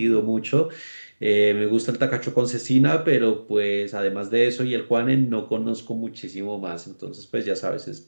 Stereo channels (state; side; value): inverted; both; correlation -1.00